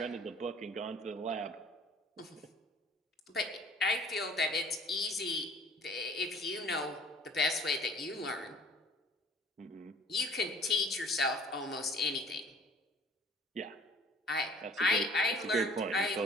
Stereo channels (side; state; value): both; normal; correlation 0.52